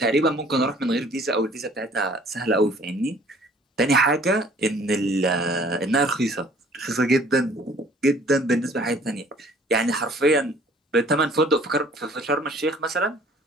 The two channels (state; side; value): normal; both; correlation 0.54